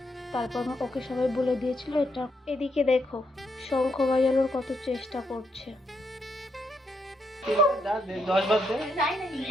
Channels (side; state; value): both; normal; correlation 0.78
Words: তারপর ওকে সবাই বলে দিয়েছিল এটা। এদিকে দেখো শঙ্খ বাজানোর কত চেষ্টা করছে।